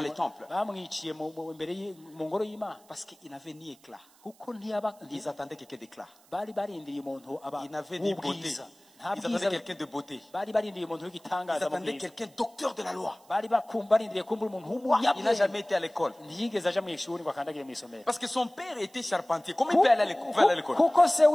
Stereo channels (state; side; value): noise; right; hiss, 28 dB below the sound